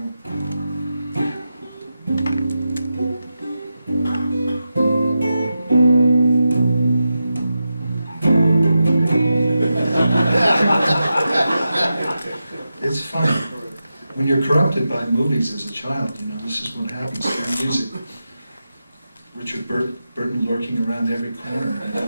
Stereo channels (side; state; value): both; inverted; correlation -0.90